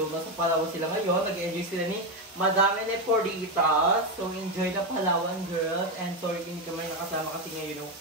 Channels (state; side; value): normal; both; correlation 0.10